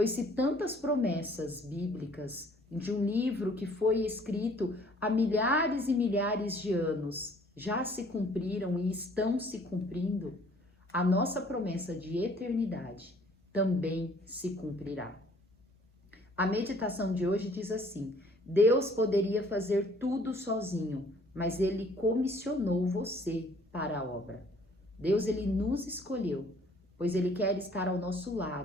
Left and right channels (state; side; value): normal; both; correlation 0.58